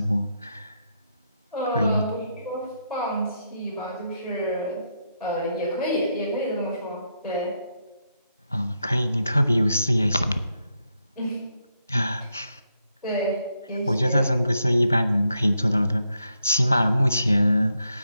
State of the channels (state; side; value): inverted; both; correlation -0.81